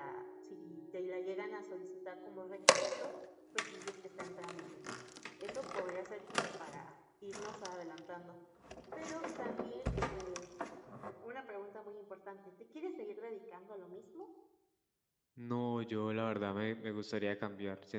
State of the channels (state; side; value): identical; both; correlation 1.00